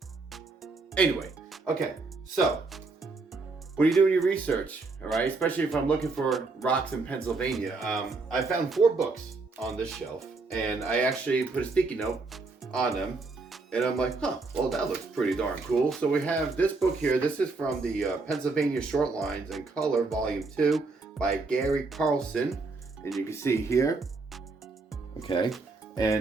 Anyway, okay, so when you're doing your research, all right, especially if I'm looking for rocks in Pennsylvania, I found 4 books on this shelf, and I actually put a sticky note on them, and I'm like, well, that looks pretty darn cool. So we have this book here. This is from the Pennsylvania Short Lines in Color, Volume 2 by Gary Carlson, and you can see here, okay,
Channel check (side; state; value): left; quieter; 3.8 dB